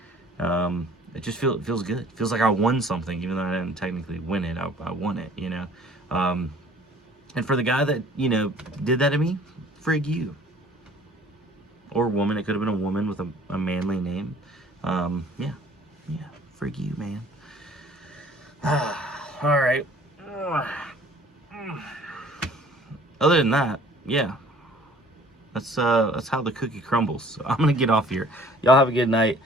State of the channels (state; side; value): normal; both; correlation 0.53